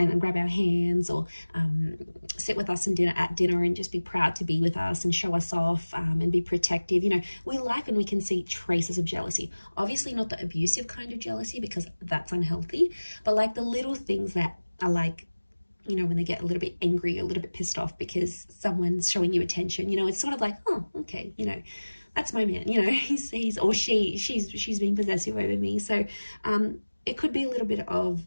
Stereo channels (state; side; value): inverted; both; correlation -1.00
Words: grab our hands, or sit with us at dinner and just be proud to be with us and show us off, and be protective. You know, we like when we can see traces of jealousy. Obviously not the abusive kind of jealousy, because that's unhealthy, but like the little things that are like, you know, when they get a little bit angry, a little bit pissed off because someone's showing you attention, you know, it's sort of like, oh, okay, you know, that's my man, you know, he's or she's being possessive over me. So it could be a little bit of